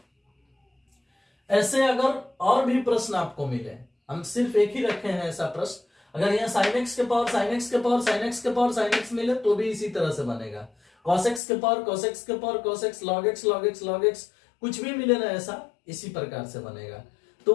ऐसे अगर और भी प्रश्न आपको मिले, हम सिर्फ एक ही रखे हैं ऐसा प्रश्न, अगर यहाँ साइन एक्स के पावर साइन एक्स के पावर साइन एक्स के पावर साइन एक्स मिले तो भी इसी तरह से बनेगा। कॉस एक्स के पावर कॉस एक्स के power cos x, log x log x log x, कुछ भी मिले ना ऐसा इसी प्रकार से बनेगा। तो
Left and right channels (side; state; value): right; drops out; at 11.4 s